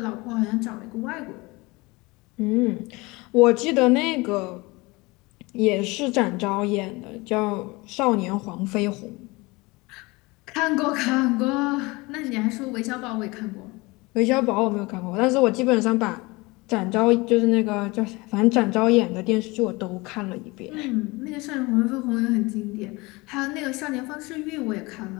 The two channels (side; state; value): right; quieter; 23.8 dB